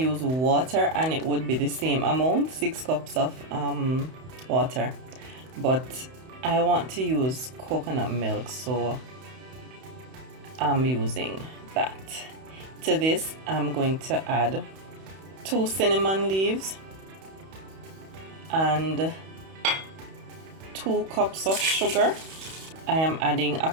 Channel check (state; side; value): late; left; 31 ms